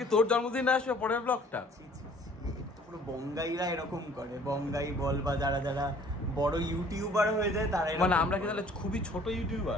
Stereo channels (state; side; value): normal; both; correlation 0.55